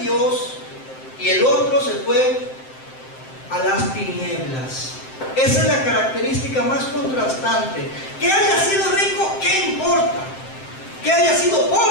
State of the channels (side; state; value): right; late; 7.7 ms